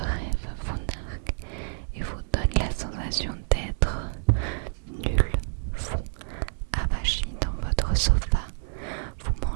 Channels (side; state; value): left; silent; 60 dB below the other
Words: vous nargue et vous donne la sensation d'être nul, fou, avachi dans votre sofa. Vous